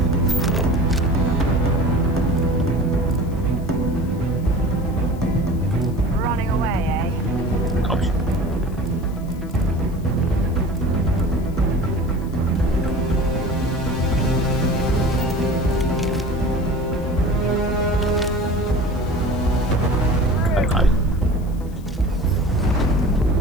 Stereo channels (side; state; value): left; noise; hiss, 26 dB below the sound